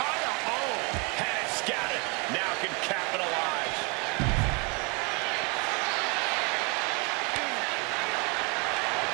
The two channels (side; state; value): left; quieter; 30.4 dB